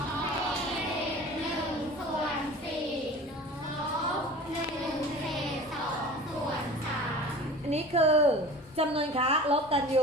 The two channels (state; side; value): normal; both; correlation 0.39